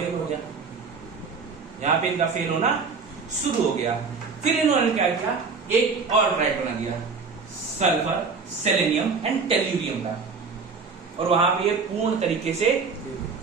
हो गया, यहां पे इनका फेल होना शुरू हो गया। फिर इन्होंने क्या किया, एक और ट्राइड बना दिया, सल्फर, सेलेनियम एंड टेल्यूरियम का, और वहां पे ये पूर्ण तरीके से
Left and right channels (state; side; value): quieter; left; 4.9 dB